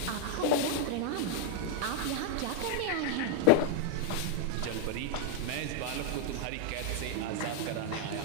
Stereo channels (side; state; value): both; different; correlation -0.01